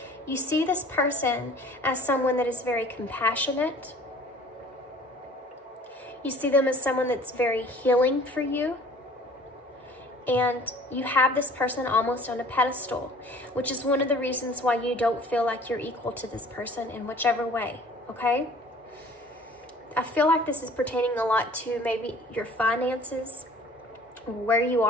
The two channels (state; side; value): normal; both; correlation 0.50